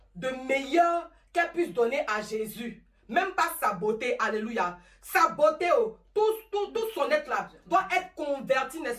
de meilleur qu'elle puisse donner à Jésus. Même pas sa beauté, alléluia. Sa beauté, tout son être là, doit être converti,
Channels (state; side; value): identical; both; correlation 1.00